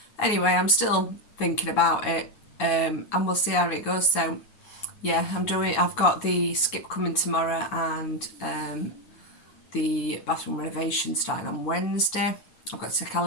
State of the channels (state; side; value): late; right; 9.6 ms